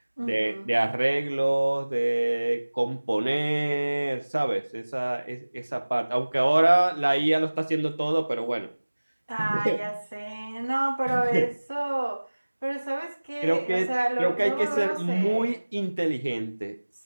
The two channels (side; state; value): both; inverted; correlation -1.00